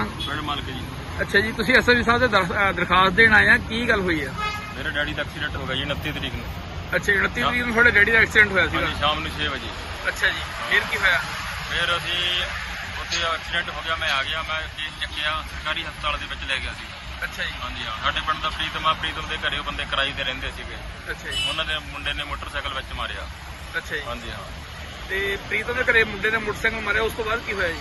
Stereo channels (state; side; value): identical; both; correlation 1.00